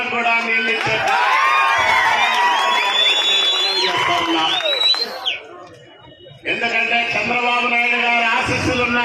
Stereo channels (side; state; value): both; identical; correlation 1.00